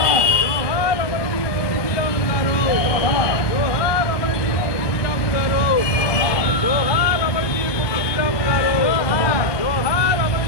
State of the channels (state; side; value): late; right; 1.2 ms